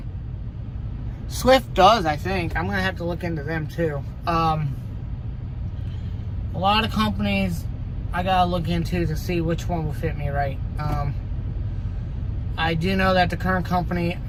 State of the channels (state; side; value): identical; both; correlation 1.00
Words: Swift does, I think. I'm going to have to look into them too. A lot of companies I gotta look into to see which one will fit me right. I do know that the current company,